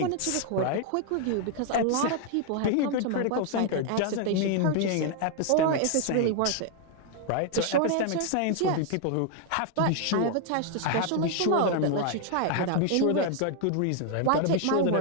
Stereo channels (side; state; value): both; different; correlation 0.00